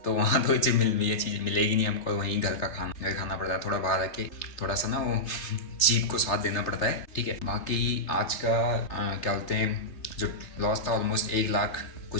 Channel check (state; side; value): late; right; 3.3 ms